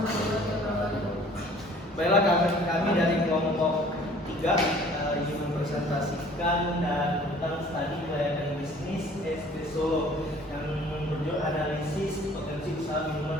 Baiklah, kami dari kelompok 3 ingin mempresentasikan tentang studi kelayakan bisnis ST Solo yang berjudul analisis potensi usaha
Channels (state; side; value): normal; both; correlation 0.53